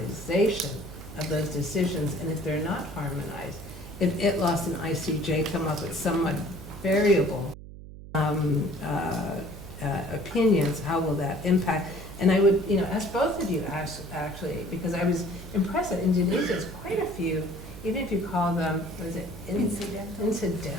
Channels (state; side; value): noise; right; hum, 14 dB below the sound